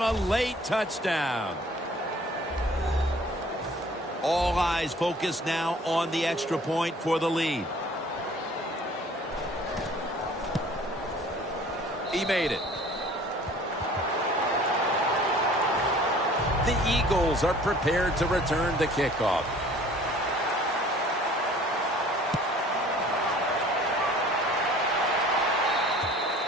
A late touchdown. All eyes focused now on the extra point for the lead. He made it. The Eagles are prepared to return the kickoff.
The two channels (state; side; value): normal; both; correlation 0.50